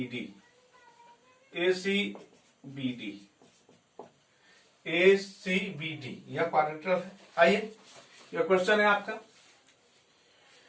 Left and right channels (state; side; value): identical; both; correlation 1.00